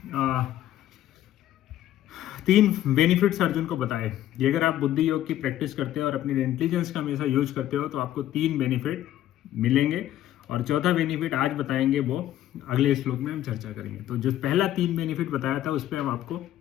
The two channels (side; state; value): right; quieter; 12.9 dB